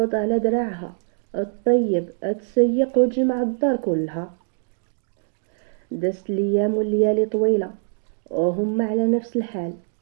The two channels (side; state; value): left; silent; 58 dB below the other